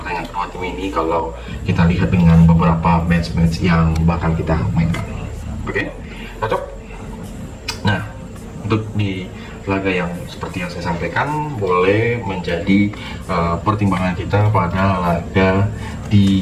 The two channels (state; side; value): identical; both; correlation 1.00